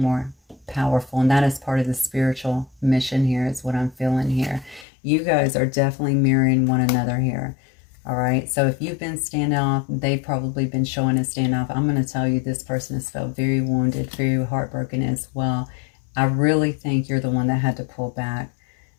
powerful. And that is part of the spiritual mission here, is what I'm feeling here. You guys are definitely mirroring one another here. All right, so if you've been standoff, they've probably been showing a standoff. I'm going to tell you, this person has felt very wounded, very heartbroken as well. I really think you're the one that had to pull back.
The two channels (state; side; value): drops out; right; at 4.9 s